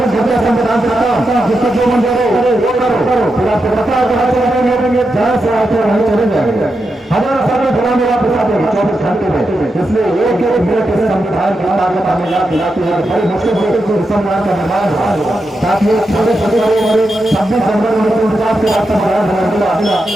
घंटे संविधान देता जिसको जो मन करो वो करो, फिर आपको पता है जहाँ से आते वहीं चले जाएंगे। हजारों साल में गुलामी आप बता देंगे 24 घंटे में। इसलिए एक एक मिनट इस संविधान की ताकत हमें याद दिलाती है। बड़ी मुश्किल से संविधान का निर्माण हुआ, ताकि छोटे छोटे 26 जनवरी 1949 के बाद संविधान मिला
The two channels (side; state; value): both; normal; correlation 0.87